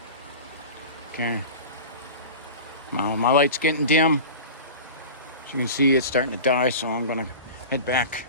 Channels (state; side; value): inverted; both; correlation -0.34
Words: Okay. Now my light's getting dim. As you can see, it's starting to die, so I'm gonna head back